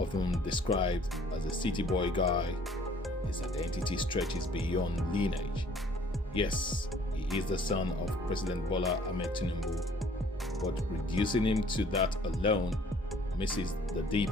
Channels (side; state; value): both; normal; correlation 0.57